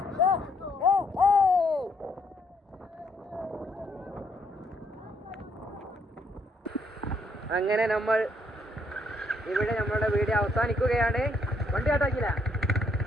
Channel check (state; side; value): normal; both; correlation 0.71